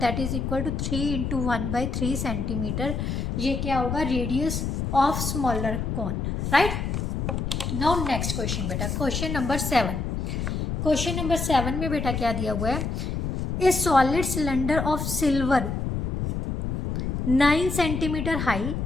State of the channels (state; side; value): noise; left; rumble, 2 dB below the sound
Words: is equal to 3 into 1/3 centimetre. ये क्या होगा, radius of smaller cone, right. Now next question बेटा, क्वेश्चन नंबर 7। क्वेश्चन नंबर 7 में बेटा क्या दिया हुआ है, a solid cylinder of silver 9 centimetre high